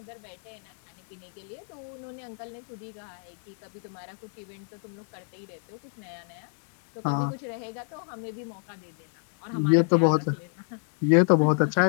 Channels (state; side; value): silent; right; 58 dB below the other